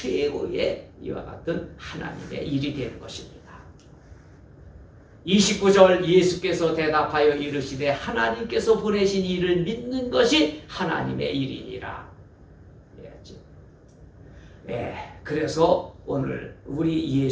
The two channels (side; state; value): both; identical; correlation 1.00